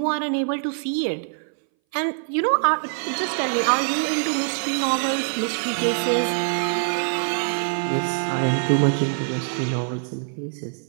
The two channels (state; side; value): silent; left; 60 dB below the other